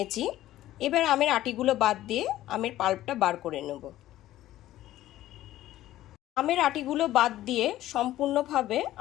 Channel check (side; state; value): right; quieter; 14.3 dB